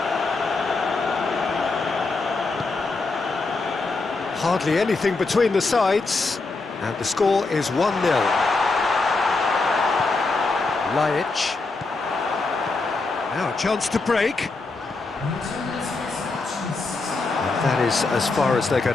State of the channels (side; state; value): right; quieter; 3.7 dB